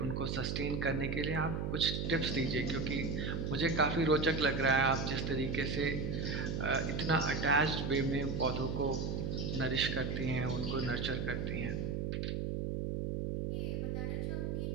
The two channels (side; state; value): right; noise; hum, 1 dB below the sound